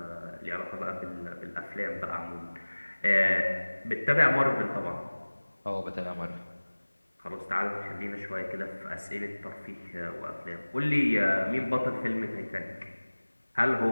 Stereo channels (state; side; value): inverted; both; correlation -1.00